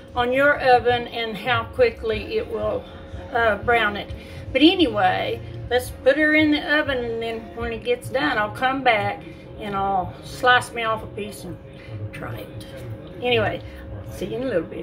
on your oven and how quickly it will brown it. But anyway, let's put her in the oven, and then when it gets done, I'll come back and I'll slice me off a piece and try it. Anyway, see you in a little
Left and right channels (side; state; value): both; identical; correlation 1.00